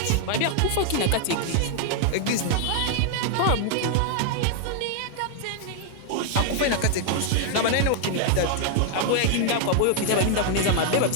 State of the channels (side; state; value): both; different; correlation 0.00